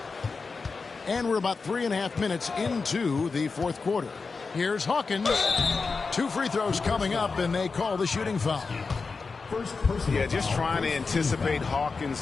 And we're about 3.5 minutes into the fourth quarter. Here's Hawkins. 2 free throws coming up, and they call the shooting foul. Yeah, just trying to anticipate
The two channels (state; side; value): quieter; right; 4.5 dB